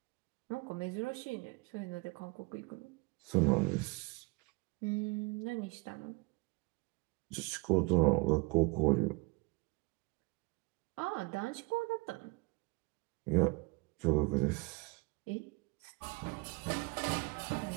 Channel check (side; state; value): left; quieter; 27.4 dB